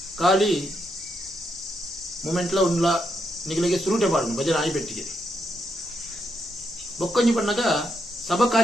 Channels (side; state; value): both; normal; correlation 0.80